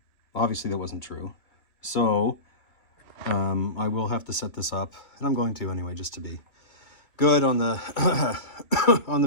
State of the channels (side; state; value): right; late; 2.7 ms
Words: Obviously that wasn't true. So I will have to set this up, and I'm going to anyway, just to be good on the on the